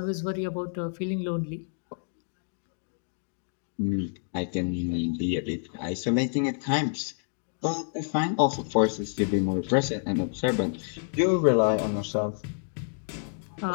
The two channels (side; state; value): right; silent; digital silence